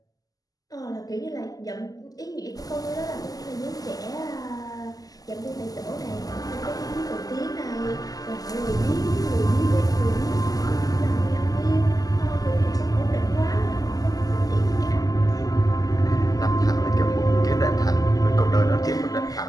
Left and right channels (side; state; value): right; late; 0.17 ms